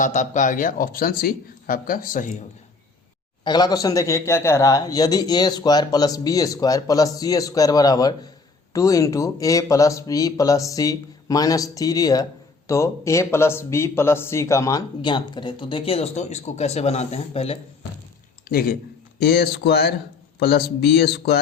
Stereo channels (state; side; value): quieter; right; 4.2 dB